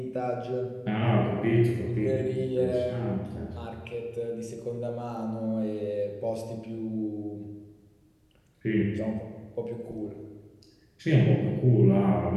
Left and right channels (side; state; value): both; identical; correlation 1.00